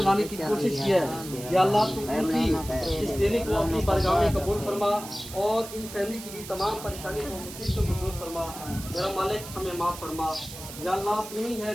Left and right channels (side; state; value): right; noise; hiss, 13 dB below the sound